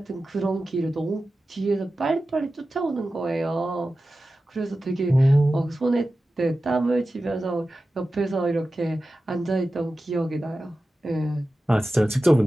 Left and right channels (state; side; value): normal; both; correlation 0.94